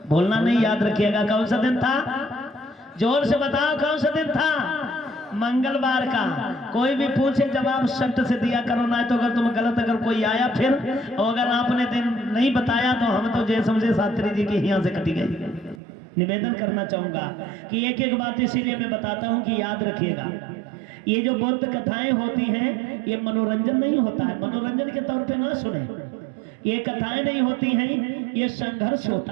बोलना नहीं, याद रखिएगा। कौन सा दिन था? जोर से बताओ, कौन सा दिन था? मंगलवार का। कोई भी पूछे जवाब सख्त से दिया करो, ना तो अगर तुम गलत, अगर कोई आया फिर, और अगर आपने दिन नहीं बताया तो हम तो जय समझे शास्त्री जी के यहाँ से कटी गई। निवेदन करना चाहूंगा कि एक एक बात इसीलिए मैं बताता हूँ कि याद रखिएगा। ये जो बौद्ध कथाएं होती हैं, ये मनोरंजन नहीं होता है। मनोरंजन के तौर पे ना सुने, ये कथाएं नहीं होती हैं, ये संघर्ष होता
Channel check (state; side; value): drops out; left; at 15.8 s